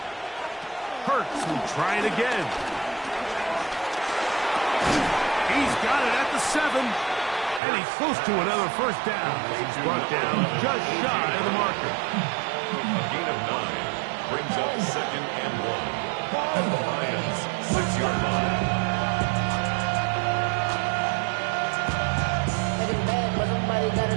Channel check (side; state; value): left; drops out; at 7.6 s